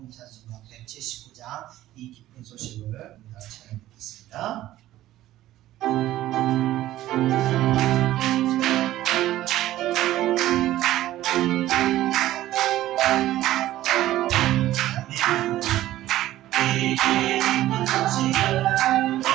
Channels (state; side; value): quieter; left; 14.6 dB